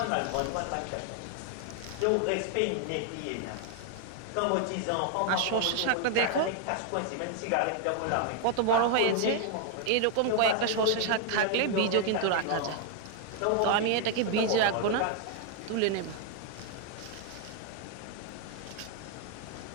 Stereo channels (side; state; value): both; different; correlation 0.00